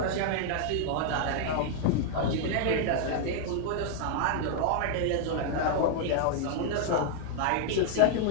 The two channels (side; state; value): both; different; correlation 0.00